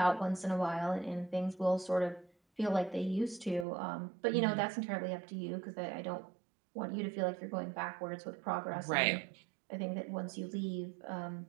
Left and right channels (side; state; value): left; drops out; at 3.7 s